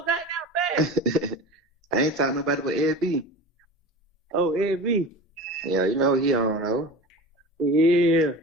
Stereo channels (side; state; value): both; normal; correlation 0.33